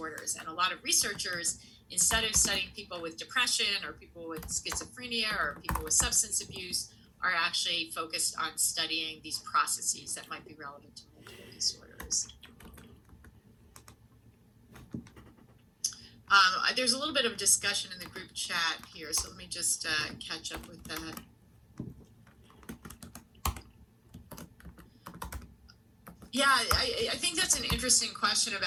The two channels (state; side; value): identical; both; correlation 1.00